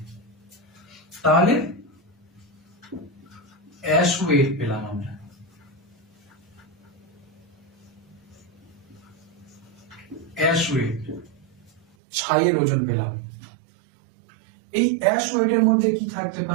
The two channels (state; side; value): drops out; left; at 11.9 s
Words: তাহলে অ্যাশ ওয়েট পেলাম আমরা, অ্যাশ ওয়েট, ছাইয়ের ওজন পেলাম। এই অ্যাশ ওয়েটের মধ্যে কি থাকতে